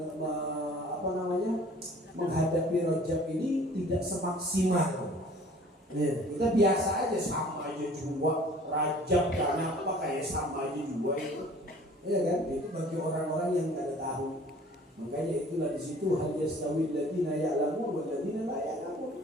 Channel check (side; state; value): both; normal; correlation 0.50